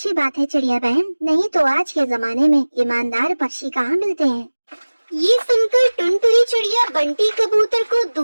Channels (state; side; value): inverted; both; correlation -1.00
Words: बात है चिड़िया बहन, नहीं तो आज के जमाने में ईमानदार पक्षी कहाँ मिलते हैं। ये सुनकर टुनटुनी चिड़िया बंटी कबूतर को